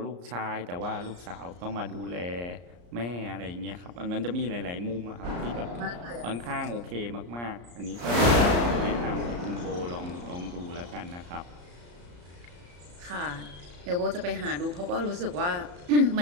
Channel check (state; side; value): late; left; 34 ms